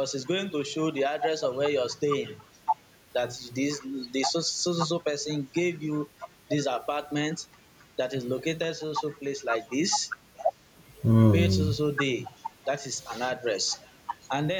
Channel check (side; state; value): both; identical; correlation 1.00